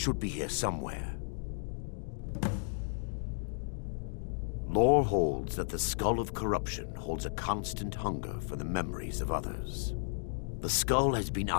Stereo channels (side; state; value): right; silent; digital silence